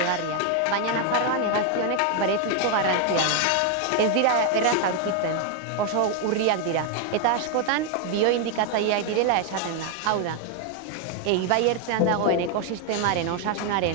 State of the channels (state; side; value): different; both; correlation 0.01